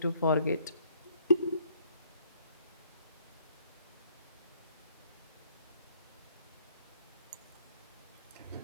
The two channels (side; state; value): both; inverted; correlation -0.64